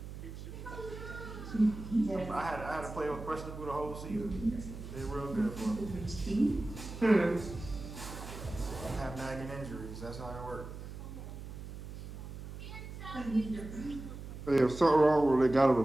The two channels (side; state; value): right; noise; hum, 10 dB below the sound